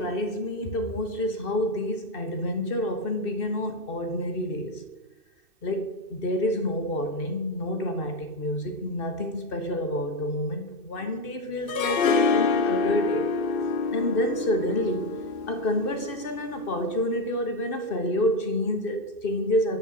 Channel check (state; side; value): late; right; 2.6 ms